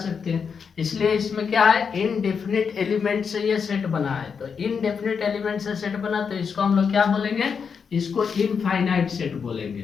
हैं, इसलिए इसमें क्या है, इनडेफिनिट एलिमेंट से ये सेट बना है। तो इनडेफिनिट एलिमेंट से सेट बना, तो इसको हम लोग क्या बोलेंगे, इसको इनफाइनाइट सेट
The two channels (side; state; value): right; quieter; 6.2 dB